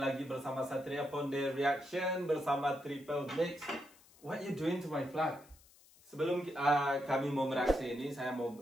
lagi bersama Satria Ponde Reaction bersama Triple Mix. What you doing to my flag? Sebelum kami mau mereaksi ini, saya mau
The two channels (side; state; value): left; noise; hiss, 26 dB below the sound